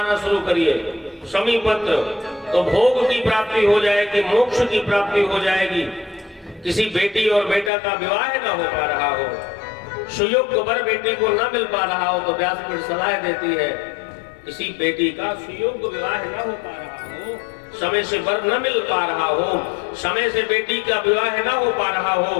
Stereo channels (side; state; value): right; drops out; at 7.7 s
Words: शुरू करिए, शमी पत्र, तो भोग की प्राप्ति हो जाएगी, मोक्ष की प्राप्ति हो जाएगी। किसी बेटी और बेटा का विवाह न हो पा रहा हो, सुयोग्य वर बेटी को न मिल पा रहा हो तो व्यासपीठ सलाह देती है, किसी बेटी का सुयोग्य विवाह न हो पा रहा हो, समय से वर न मिल पा रहा हो, समय से बेटी का विवाह न हो पा रहा हो,